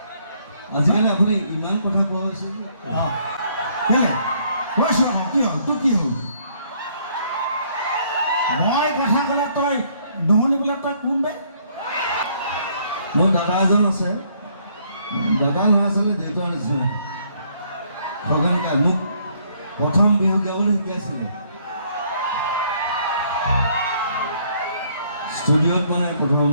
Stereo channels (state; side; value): inverted; both; correlation -0.66